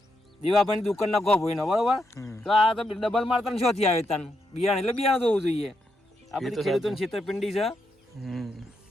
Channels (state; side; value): normal; both; correlation 0.81